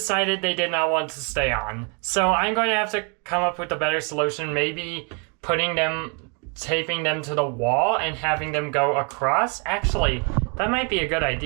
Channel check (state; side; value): quieter; left; 35.7 dB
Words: they did not want to stay on. So I'm going to have to come up with a better solution, maybe taping them to the wall and having them go across. Actually, that might be a good